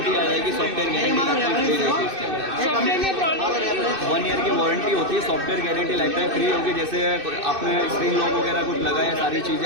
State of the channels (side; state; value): left; late; 2.6 ms